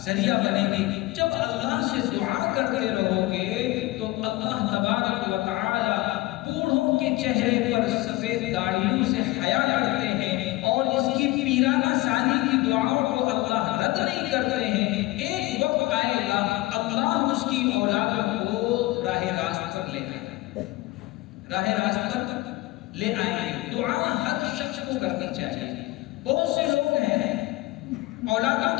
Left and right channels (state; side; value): quieter; right; 19.4 dB